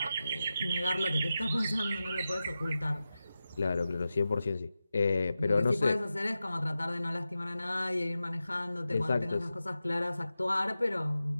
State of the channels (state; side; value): inverted; both; correlation -0.93